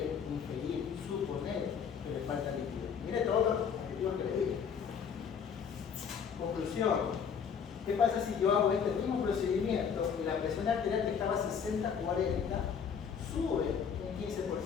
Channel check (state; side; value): quieter; right; 7.0 dB